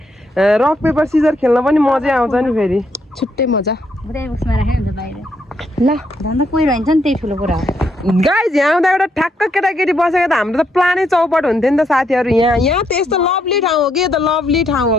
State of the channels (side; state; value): both; normal; correlation 0.76